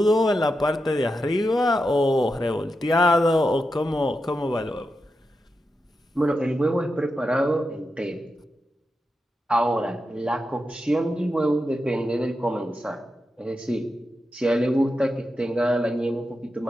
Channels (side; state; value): both; normal; correlation 0.88